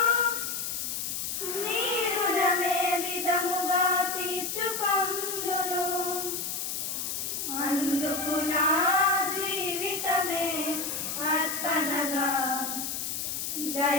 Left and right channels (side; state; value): left; noise; hiss, 3 dB below the sound